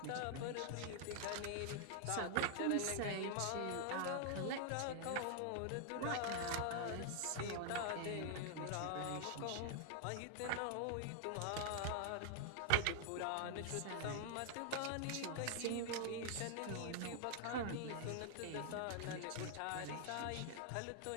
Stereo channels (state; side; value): different; both; correlation 0.00